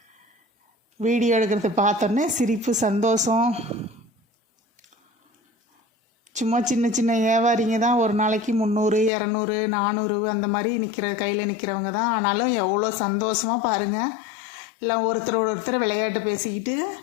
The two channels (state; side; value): drops out; right; at 9.1 s